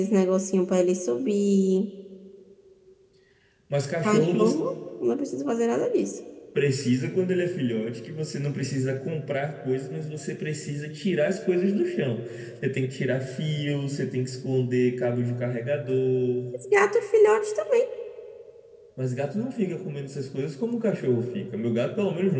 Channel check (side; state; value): both; identical; correlation 1.00